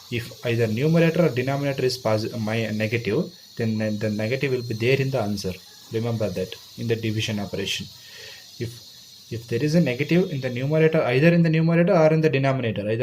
If either numerator or denominator is negative, then the negative will be there in the answer. Remember that in the division operation. If there is a negative in the numerator, either in the numerator or in the denominator,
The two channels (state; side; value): identical; both; correlation 1.00